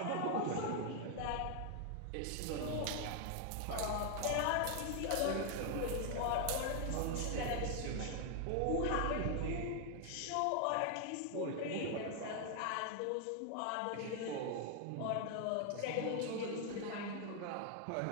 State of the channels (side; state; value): both; different; correlation 0.00